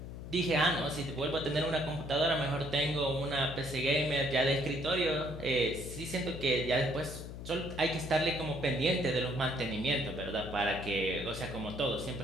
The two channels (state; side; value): noise; left; hum, 10 dB below the sound